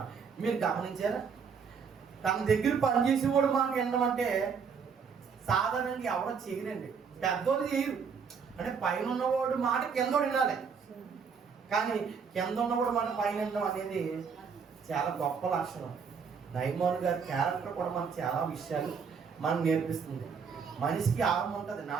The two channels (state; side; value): quieter; left; 6.1 dB